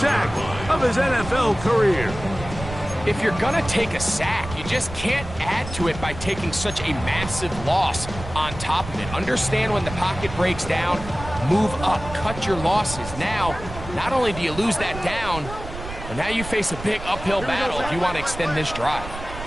of his NFL career. If you're going to take a sack, you just can't add to it by taking such a massive loss on top of it. Understand when the pocket breaks down, move up, cut your losses. Now, not only do you lose that down, but now you face a big uphill battle if you want to extend this drive.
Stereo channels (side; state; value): right; noise; rumble, 11 dB below the sound